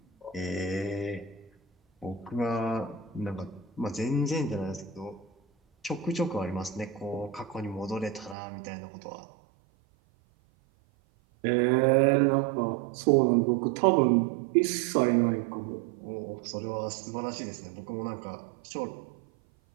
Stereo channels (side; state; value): left; drops out; at 8.3 s